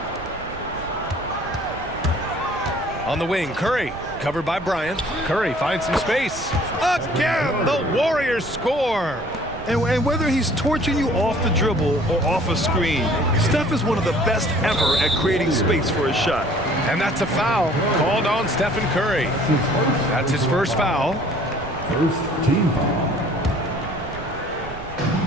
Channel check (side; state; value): right; noise; rumble, 15 dB below the sound